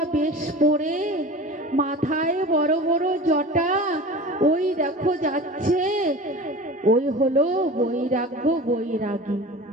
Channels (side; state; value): both; normal; correlation 0.36